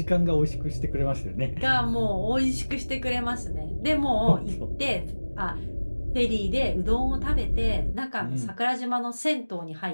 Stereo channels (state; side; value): inverted; both; correlation -1.00